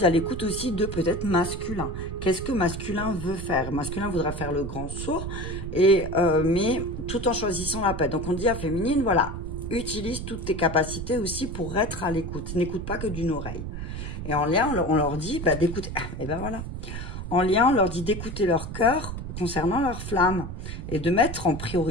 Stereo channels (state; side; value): noise; right; rumble, 7 dB below the sound